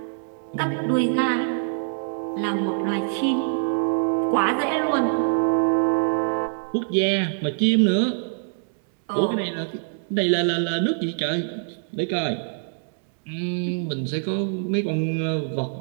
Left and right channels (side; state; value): left; silent; digital silence